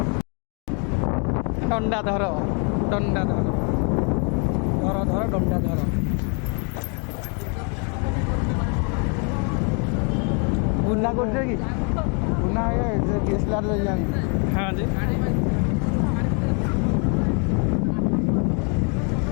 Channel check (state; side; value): quieter; right; 37.6 dB